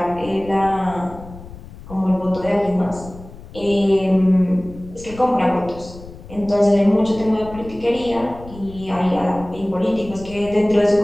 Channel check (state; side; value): noise; left; rumble, 16 dB below the sound